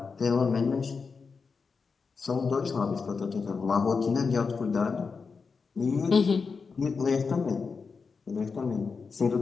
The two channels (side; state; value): right; quieter; 5.0 dB